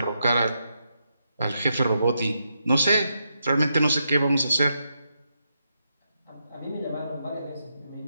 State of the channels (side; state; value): both; inverted; correlation -0.82